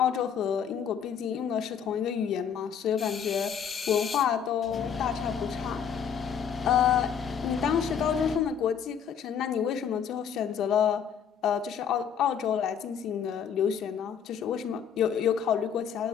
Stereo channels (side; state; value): right; quieter; 7.8 dB